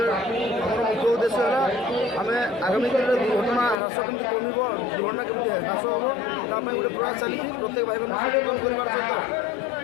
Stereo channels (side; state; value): right; drops out; at 3.8 s